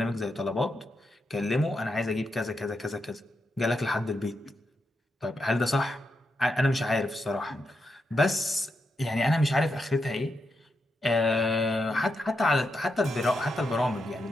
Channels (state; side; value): normal; both; correlation 0.84